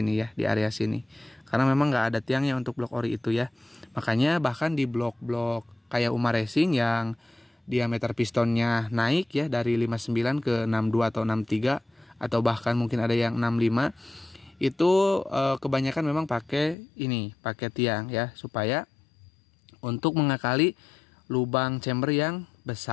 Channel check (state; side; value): drops out; right; at 16.8 s